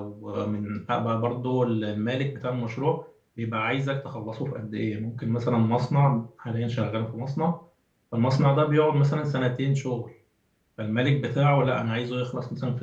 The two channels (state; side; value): identical; both; correlation 1.00